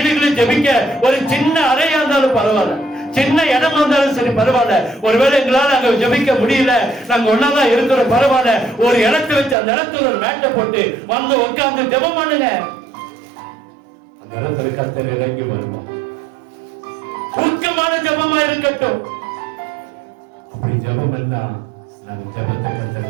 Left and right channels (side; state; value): left; drops out; at 9.6 s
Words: ஜெபிக்க ஒரு சின்ன அறையா இருந்தாலும் பரவாயில்ல, சின்ன இடமா இருந்தாலும் சரி பரவாயில்ல. ஒருவேளை எங்களால அங்க ஜெபிக்க முடியல, நாங்க ஒன்னாதான் இருக்கிற பரவாயில்ல, ஒரு இடத்தை வச்சு அந்த இடத்துல ஒரு மேட்டை போட்டு வந்து உட்கார்ந்து ஜெபம் பண்ணுங்க. அந்த இடத்துல கர்த்தர் இறங்கி வருவோம். ஊக்கமான ஜெபமா இருக்கட்டும். அப்படி ஜெபம் என்ன, நம்ம ஜெபத்தை